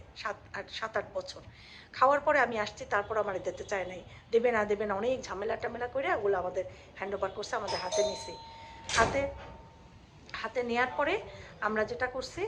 7-8 বছর খাওয়ার পরে আমি আসছি, তারপর আমার দিতে চায় নাই, দেবে না দেবে না, অনেক ঝামেলা টামেলা করে ওগুলো আমাদের হ্যান্ড ওভার করছে, আমাদের হাতে নিছি। হাতে হাতে নেওয়ার পরে আমরা যেটা করছি,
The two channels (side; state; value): both; identical; correlation 1.00